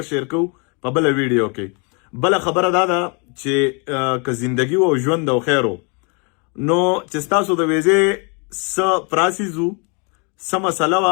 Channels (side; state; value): right; quieter; 34.5 dB